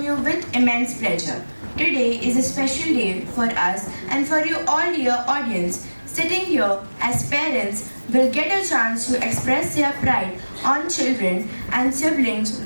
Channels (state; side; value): inverted; both; correlation -1.00